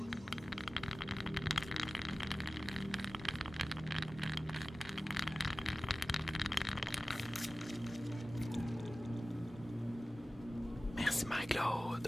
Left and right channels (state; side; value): normal; both; correlation 0.96